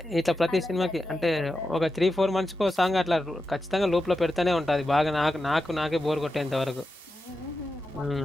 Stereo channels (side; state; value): both; normal; correlation 0.89